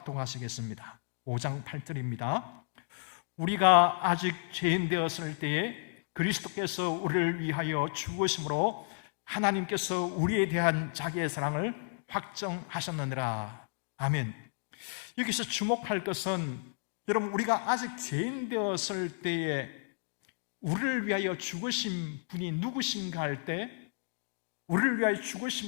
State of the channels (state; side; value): silent; right; digital silence